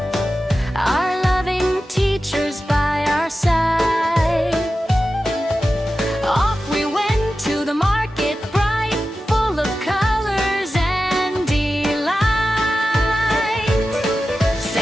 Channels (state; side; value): normal; both; correlation 0.93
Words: our loving teachers by our side. Off we went to the market, bright, full of colors and delight.